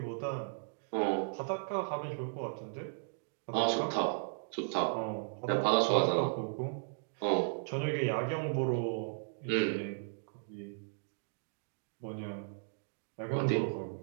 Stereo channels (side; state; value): left; silent; digital silence